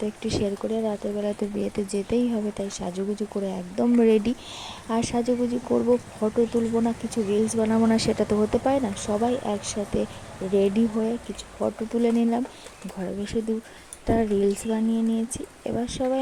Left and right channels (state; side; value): identical; both; correlation 1.00